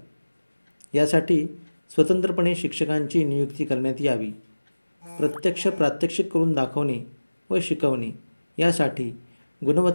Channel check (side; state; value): both; inverted; correlation -1.00